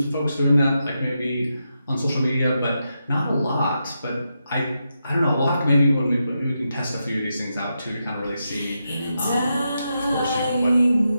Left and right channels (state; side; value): inverted; both; correlation -0.86